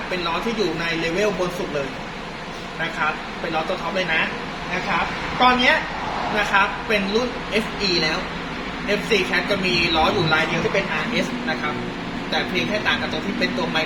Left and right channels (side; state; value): both; identical; correlation 1.00